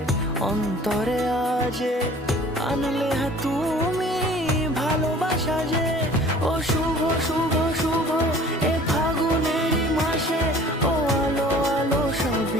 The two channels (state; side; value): normal; both; correlation 0.48